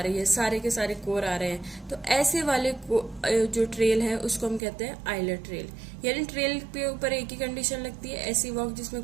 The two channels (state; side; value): drops out; left; at 4.6 s